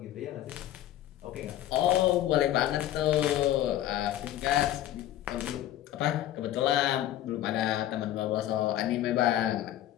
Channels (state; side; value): quieter; right; 12.9 dB